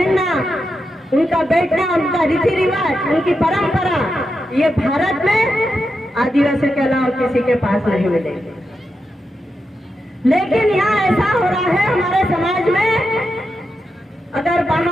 उनका बैठना, उनका रीति रिवाज, उनकी परंपरा, ये भारत में आदिवासी के अलावा किसी के पास नहीं मिलेगी। लेकिन यहाँ ऐसा हो रहा है हमारे समाज में, अगर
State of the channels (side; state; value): both; normal; correlation 0.87